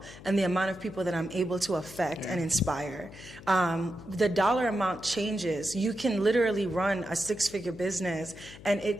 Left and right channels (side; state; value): left; noise; hum, 17 dB below the sound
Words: and the amount of people that I'm able to affect and inspire. The dollar amount changes. You can literally run a 6-figure business and